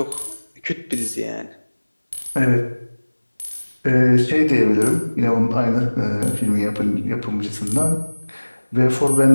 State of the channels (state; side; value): inverted; both; correlation -1.00